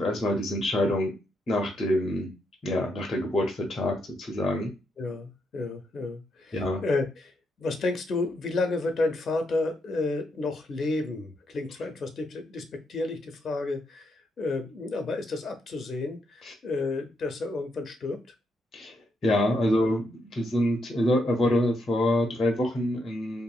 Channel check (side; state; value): both; normal; correlation 0.79